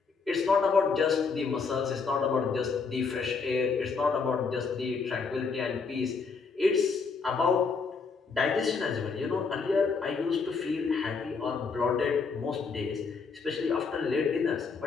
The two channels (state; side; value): quieter; right; 5.0 dB